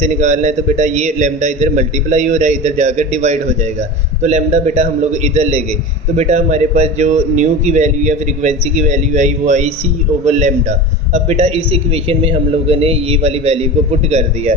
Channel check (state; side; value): normal; both; correlation 0.30